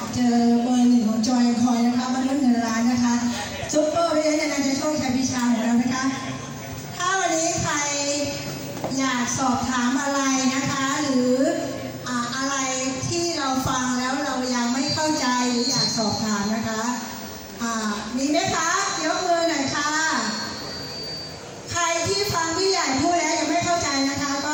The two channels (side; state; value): both; identical; correlation 1.00